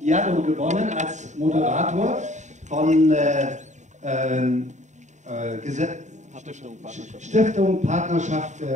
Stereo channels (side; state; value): left; late; 0.34 ms